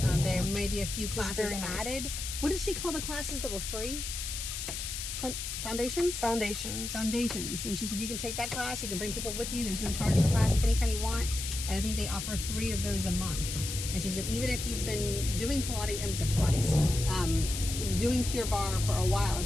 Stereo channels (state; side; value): noise; left; hiss, 5 dB below the sound